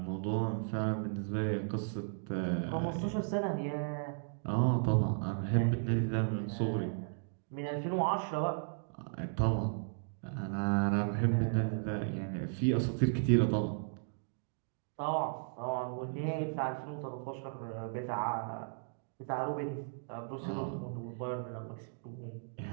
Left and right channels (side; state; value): left; silent; digital silence